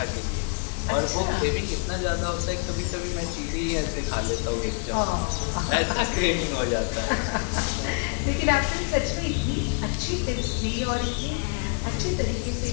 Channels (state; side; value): quieter; right; 37.4 dB